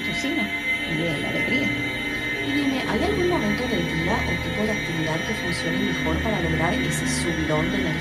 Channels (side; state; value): both; identical; correlation 1.00